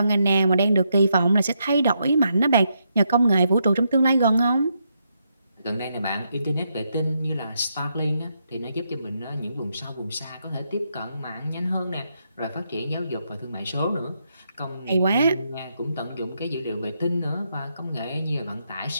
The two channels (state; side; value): inverted; both; correlation -0.80